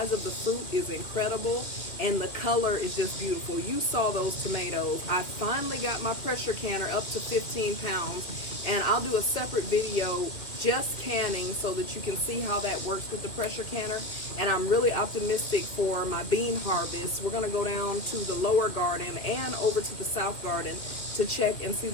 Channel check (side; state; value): right; late; 2.3 ms